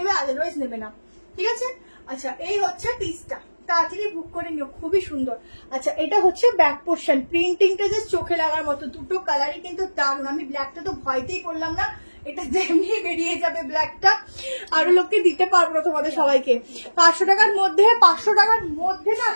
আদারওয়াইজ নেবে না, ঠিক আছে। আচ্ছা এই হচ্ছে পিসটা, তাড়াতাড়ি বুক করে নিও, খুবই সুন্দর। আচ্ছা এটা হচ্ছে ব্যাক পোর্শন, প্রিন্টিংটা যে চোখে লাগার মতো, দুটো কালারই কিন্তু দারুণ। আমি ব্ল্যাকটা তো ভয়তেই করলাম না, এটা যেমনি বেরিয়ে যাবে ব্ল্যাকটা, আরো লোককে দিতে পারবো না তোমাদের সবাইকে। 500 টাকার মধ্যে, 500 টাকার মধ্যে না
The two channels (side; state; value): both; inverted; correlation -1.00